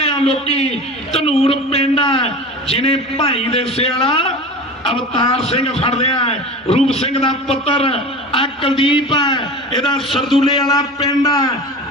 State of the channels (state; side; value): normal; both; correlation 0.33